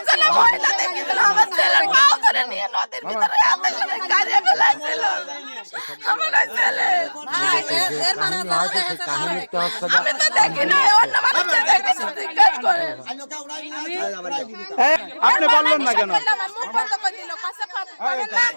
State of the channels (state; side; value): inverted; both; correlation -1.00